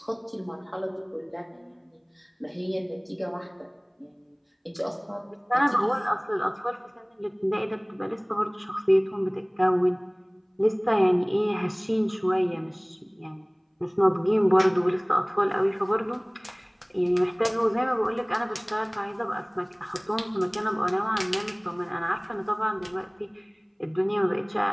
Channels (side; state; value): both; identical; correlation 1.00